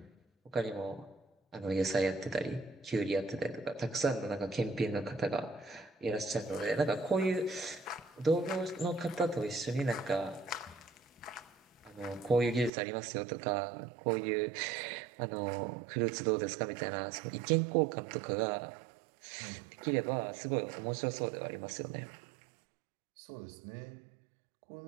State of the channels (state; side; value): drops out; left; at 12.7 s